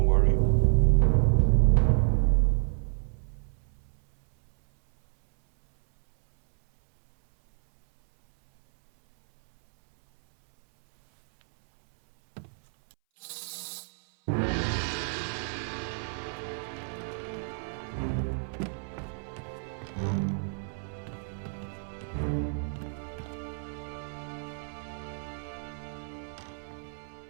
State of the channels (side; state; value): left; silent; 58 dB below the other